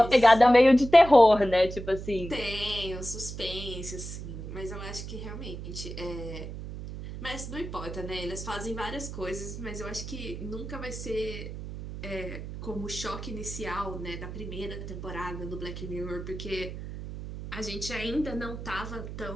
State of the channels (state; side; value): noise; right; hum, 9 dB below the sound